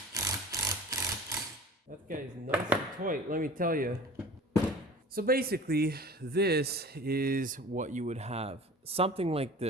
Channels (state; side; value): normal; both; correlation 0.41